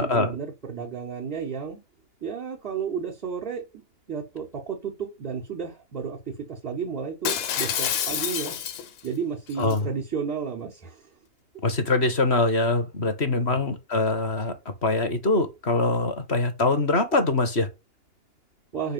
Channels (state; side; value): late; right; 2.8 ms